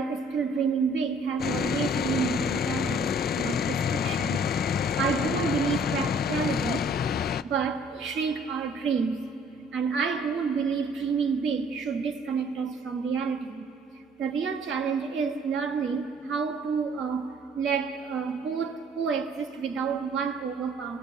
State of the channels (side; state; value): both; normal; correlation 0.57